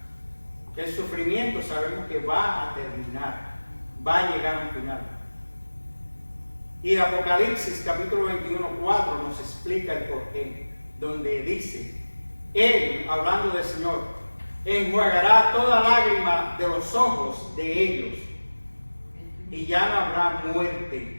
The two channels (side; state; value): both; inverted; correlation -1.00